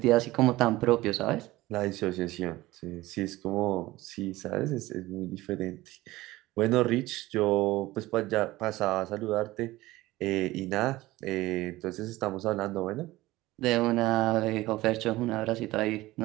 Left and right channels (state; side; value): quieter; left; 18.2 dB